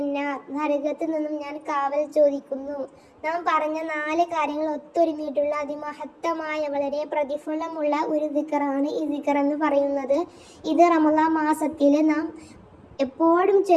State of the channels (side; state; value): both; identical; correlation 1.00